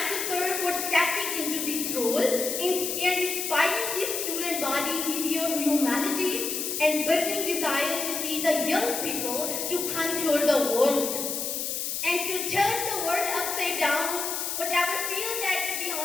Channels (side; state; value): left; noise; hiss, 2 dB below the sound